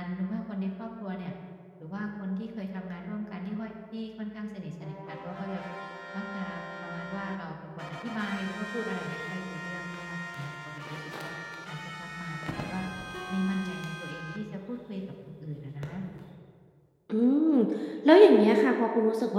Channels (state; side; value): identical; both; correlation 1.00